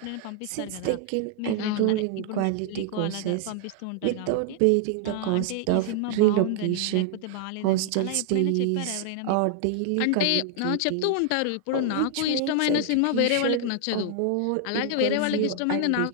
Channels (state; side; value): different; both; correlation 0.00